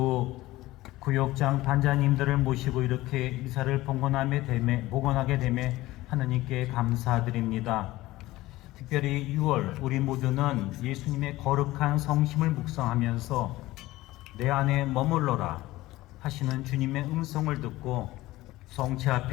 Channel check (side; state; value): right; quieter; 17.8 dB